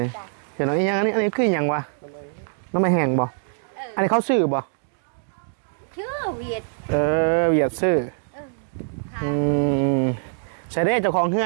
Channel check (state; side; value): silent; left; digital silence